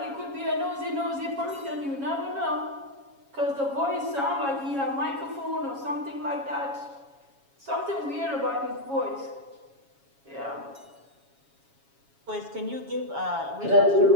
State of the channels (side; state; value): left; late; 7.2 ms